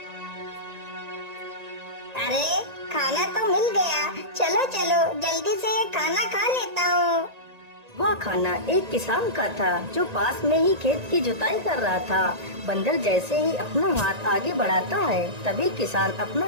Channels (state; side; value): late; left; 1.9 ms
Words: अरे, खाना तो मिल गया, चलो चलो जल्दी से ये खाना खा लेता हूँ। वह खाना एक किसान का था जो पास में ही खेत की जुताई कर रहा था। बंदर जैसे ही अपना हाथ आगे बढ़ाता है तभी किसान अपना